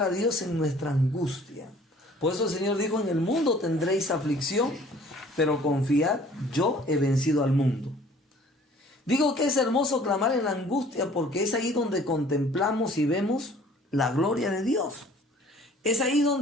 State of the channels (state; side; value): normal; both; correlation 0.53